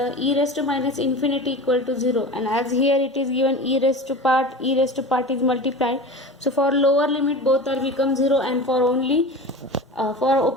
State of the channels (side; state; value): both; normal; correlation 0.32